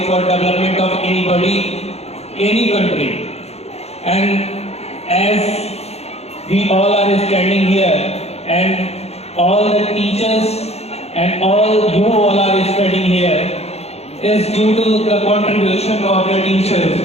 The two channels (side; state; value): right; late; 0.30 ms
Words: for development of anybody, any country. And as we all are standing here, and all the teachers and all you all are studying here, is due to the contribution of the teachers.